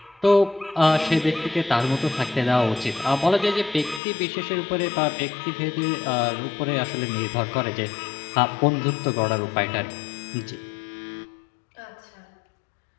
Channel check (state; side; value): drops out; right; at 4.0 s